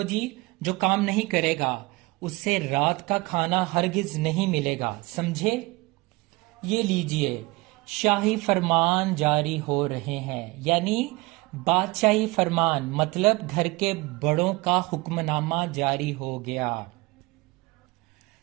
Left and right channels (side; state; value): left; quieter; 23.3 dB